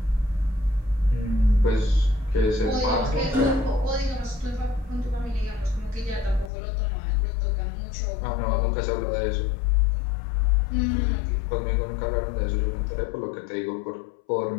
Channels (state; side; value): drops out; right; at 6.5 s